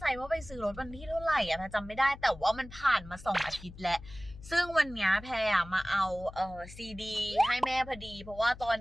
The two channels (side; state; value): left; noise; hum, 16 dB below the sound